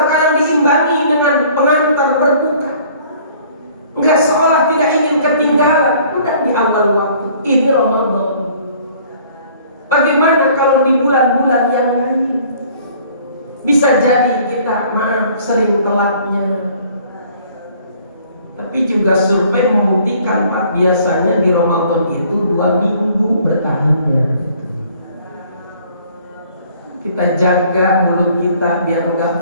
kadang diimbangi dengan pengantar berbuka. Enggak, seolah tidak ingin ketinggalan. Udah di awal waktu, ini Ramadan. Bagaimana kalau di bulan-bulan yang lain? Bisa jadi kita, maaf, sering telatnya. Tapi juga survei membuktikan, Pak, biasanya di Ramadan itu 2 minggu bertahannya. Kita jaga mulut kita biar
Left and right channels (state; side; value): inverted; both; correlation -0.56